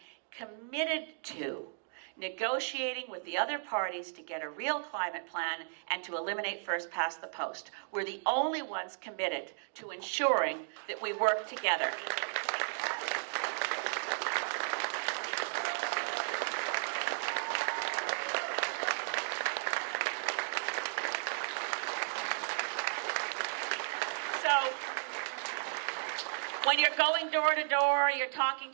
committed to negotiating with the other parties to get a real climate plan and to eliminate first past the post. We're the only ones committed to ensuring that we work together. When you're going door to door, you're talking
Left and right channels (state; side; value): silent; left; digital silence